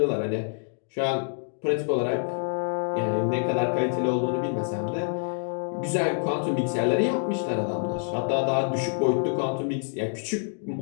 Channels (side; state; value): right; silent; digital silence